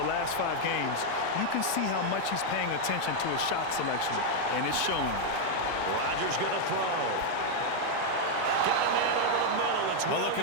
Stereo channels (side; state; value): both; different; correlation 0.00